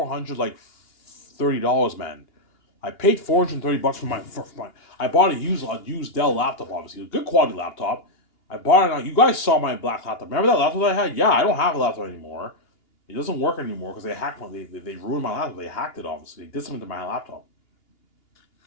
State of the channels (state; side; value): late; right; 2.8 ms